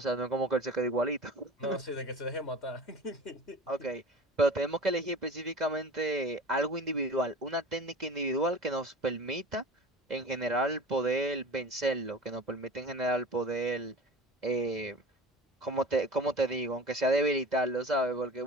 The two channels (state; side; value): normal; both; correlation 0.38